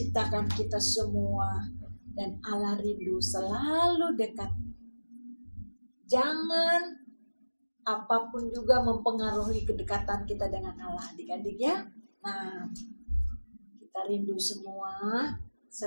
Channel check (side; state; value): both; inverted; correlation -1.00